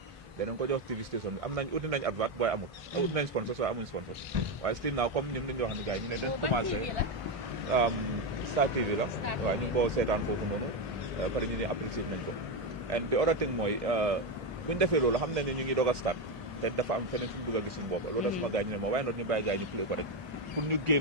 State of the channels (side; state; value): both; normal; correlation 0.09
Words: danañ ko jox TV station bi am nañ uti nañ advert waaye amul, uti nañ sponsors waaye amuñ sponsors, waaye still now comme ñun dañu wax ne gars yi ñu ne dañ commencé Star TV la, waaye ñu ngi ko seetaan foofu noonu, pare ñu ne apprécié nañ ko. and the other thing mooy bu ñu defee loolu xam nañ ne ñu ngi doog a start te dafa am feneen fi ñu bëgg a gis suñu bopp, loolu da suma gars ñu ne ma waaye noonu ñu bàyyi gars yi ñu play ko rek pour ñu